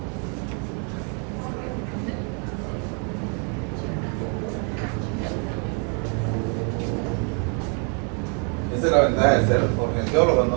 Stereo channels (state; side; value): quieter; left; 37.9 dB